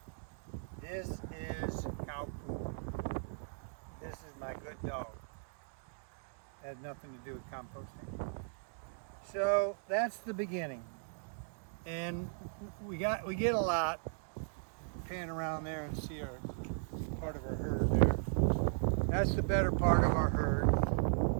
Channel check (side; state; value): left; silent; digital silence